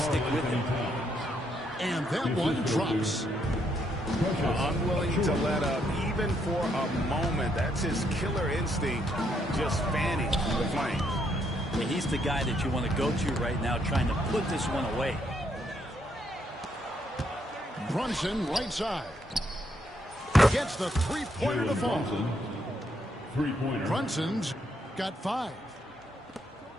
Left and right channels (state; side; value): normal; both; correlation 0.75